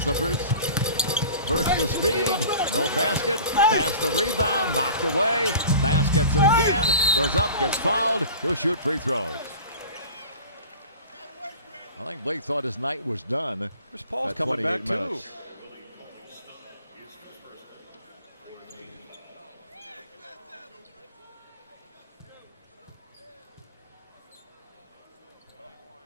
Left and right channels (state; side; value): inverted; both; correlation -0.40